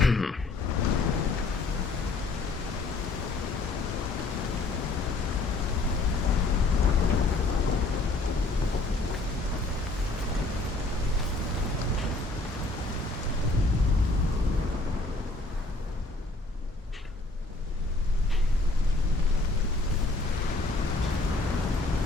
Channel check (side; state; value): right; quieter; 3.2 dB